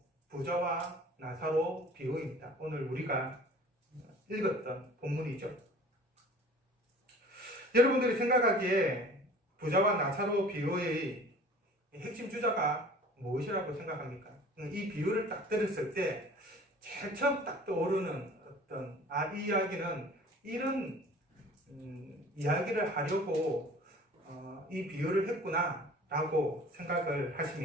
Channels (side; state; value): both; normal; correlation 0.46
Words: 부자와 나사로 비유입니다. 오늘 우리가 읽었던 본문이죠. 여러분들이 생각하기에 부자와 나사로 비유의 핵심 주자가 무엇이라고 생각합니까? 이 비유를 딱 들었을 때 제일 처음 딱 떠오르는 어떤 이 이야기는 이런 이야기를 하려고 이 비유를 했구나 라고 생각을